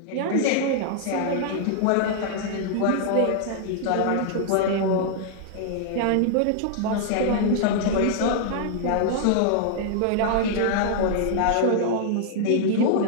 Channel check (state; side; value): different; both; correlation -0.01